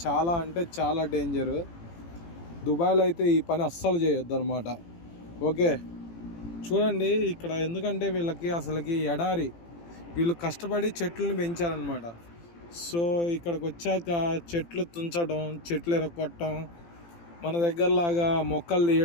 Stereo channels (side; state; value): right; late; 18 ms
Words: చాలా అంటే చాలా డేంజరు. దుబాయ్లో అయితే ఈ పని అస్సలు చేయొద్దు అనమాట. ఓకే, చూడండి ఇక్కడ ఎందుకంటే వీళ్ళకి అసలుకి ఎడారి, వీళ్ళు కష్టపడి చెట్లను పెంచారనమాట. సో ఇక్కడికి వచ్చాక చెట్లు తుంచడం, చెట్లు ఎరగొట్టడం, మన దగ్గరలాగా మొక్కలు